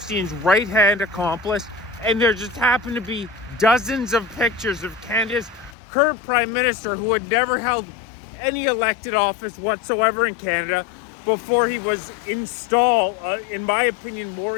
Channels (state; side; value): drops out; right; at 5.8 s